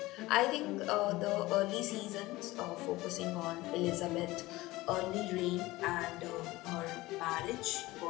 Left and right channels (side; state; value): right; quieter; 19.2 dB